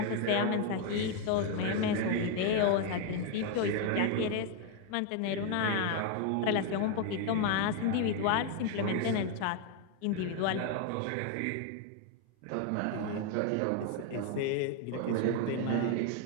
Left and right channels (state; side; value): different; both; correlation 0.01